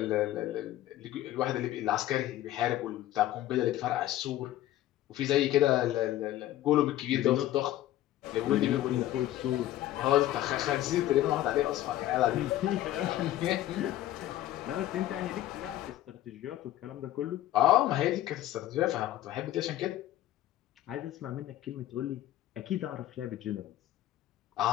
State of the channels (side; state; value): right; quieter; 13.8 dB